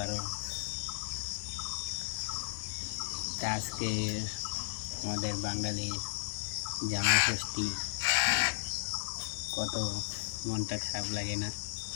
আরও। তা আজকে আমাদের বাঙালির জামাই ষষ্ঠী, কত মনটা খারাপ লাগে না?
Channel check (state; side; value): silent; right; digital silence